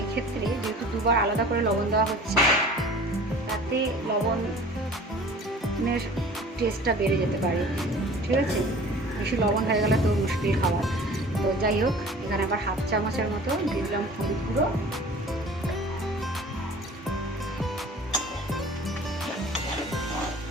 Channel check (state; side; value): normal; both; correlation 0.45